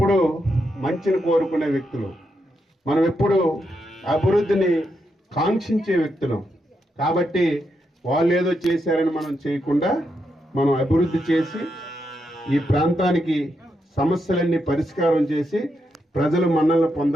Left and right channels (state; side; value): normal; both; correlation 0.83